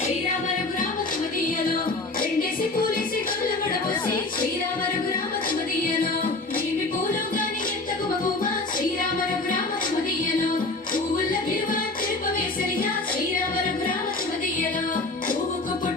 రఘురామ సుమదీయలో రెండేసి పూలేసి గొల్లబడబోసి శ్రీరామ రఘురామ సుమదీయలో నీవి పూలు గాని ఎంత గుమగుమ శ్రీరామ రఘురామ సుమదీయలో పువ్వుల విలువ తిరుపవేసరిగా శ్రీరామ రఘురామ సుమదీయలో పువ్వుకు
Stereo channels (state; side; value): quieter; right; 3.2 dB